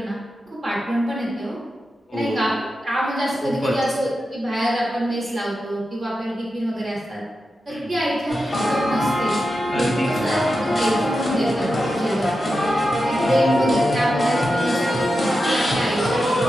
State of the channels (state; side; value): normal; both; correlation 0.90